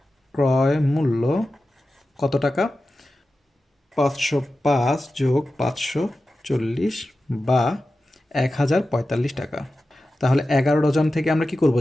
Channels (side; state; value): both; normal; correlation 0.93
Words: ক্রয় মূল্য কত টাকা? 505 যোগ 540 বা 1045 টাকা। তাহলে 11 ডজন থেকে আমরা কি করব?